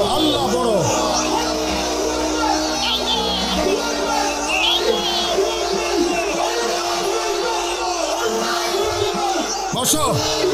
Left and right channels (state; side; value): identical; both; correlation 1.00